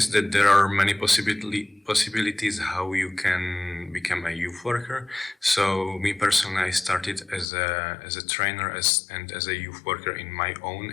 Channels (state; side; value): drops out; right; at 7.5 s